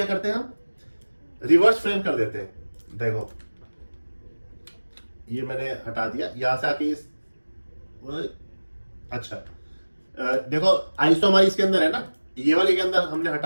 करते हैं, हम रिवर्स फ्रेम कर देते हैं। देखो ये मैंने हटा दिया, यहां से आके इस, अच्छा देखो आईज तो हमारी इसके अंदर है ना, ये वाली के अंदर हमने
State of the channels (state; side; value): inverted; both; correlation -1.00